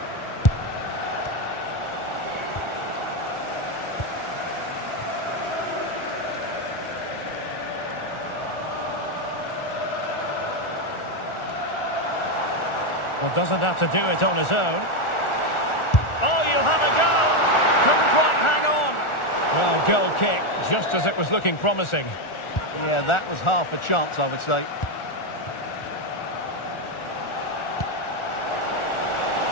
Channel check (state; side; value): late; right; 1.4 ms